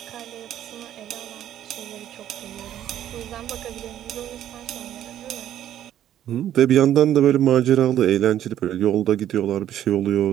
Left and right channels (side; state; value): left; quieter; 11.4 dB